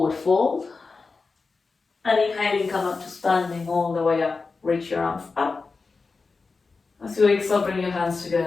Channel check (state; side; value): quieter; right; 4.3 dB